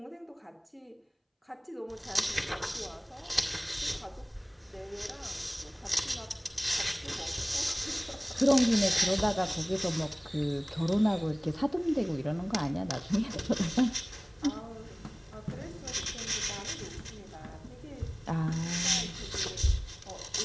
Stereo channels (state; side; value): identical; both; correlation 1.00